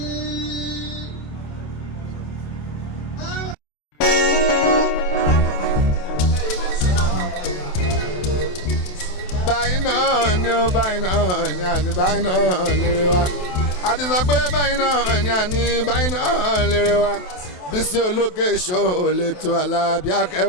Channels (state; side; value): late; right; 27 ms